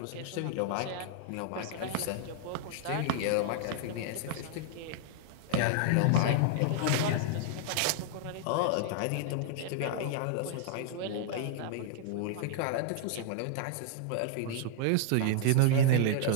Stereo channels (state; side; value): different; both; correlation -0.01